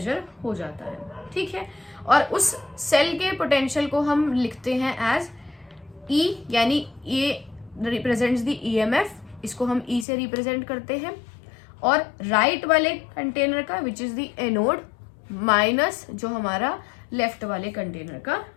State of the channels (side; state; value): right; drops out; at 10.1 s